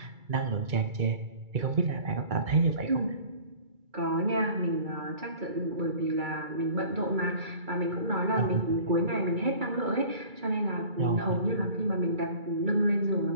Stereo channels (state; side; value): late; left; 2.3 ms